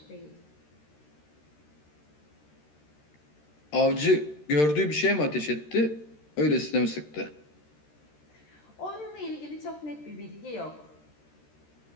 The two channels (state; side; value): late; right; 13 ms